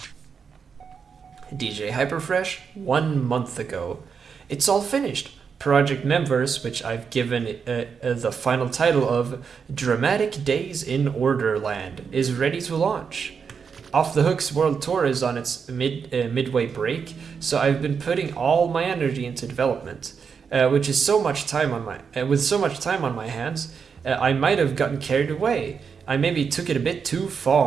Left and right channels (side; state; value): left; quieter; 6.2 dB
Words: DJ Hyperfresh 1 month ago. It's all finished. Project Members, which I've given the final title of Dramatic Days in Orderland, is ready to launch. Off the Hook's World Tour is on its midway break, so I've been putting all my energy into development, which is so much time on my with so much time on my hands, I might have gotten carried away. I maybe took it a bit too